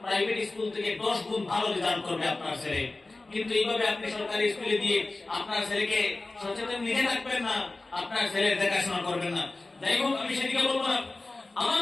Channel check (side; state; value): right; quieter; 3.2 dB